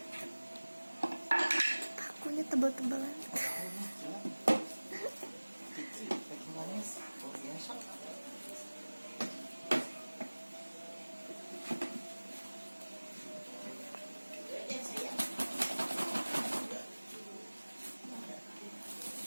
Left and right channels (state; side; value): inverted; both; correlation -1.00